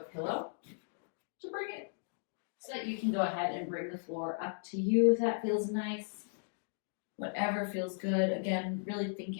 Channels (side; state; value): right; silent; digital silence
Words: to bring it so that you can go ahead and bring the floor up to you if that feels nice. Whatever feels good. Again, really